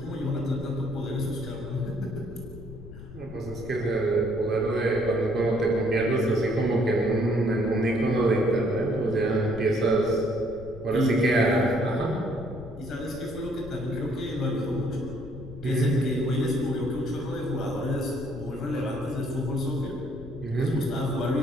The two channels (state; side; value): noise; left; rumble, 14 dB below the sound